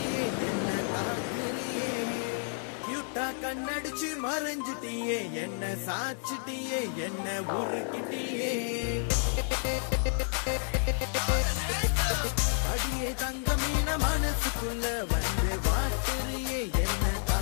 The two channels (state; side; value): silent; right; 57 dB below the other